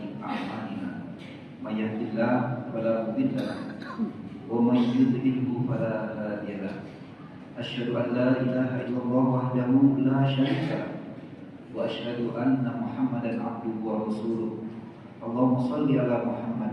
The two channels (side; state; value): both; identical; correlation 1.00